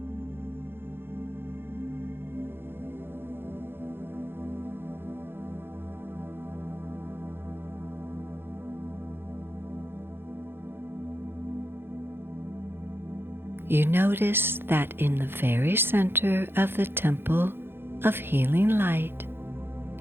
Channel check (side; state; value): left; late; 0.11 ms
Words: You notice that in the very center of the Temple of Healing Light,